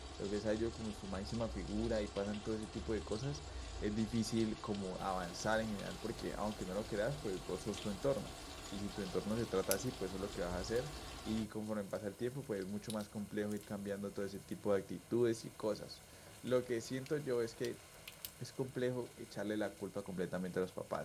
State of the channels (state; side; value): identical; both; correlation 1.00